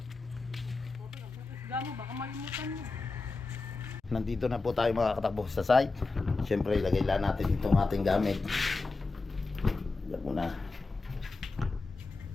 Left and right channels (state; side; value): quieter; right; 3.7 dB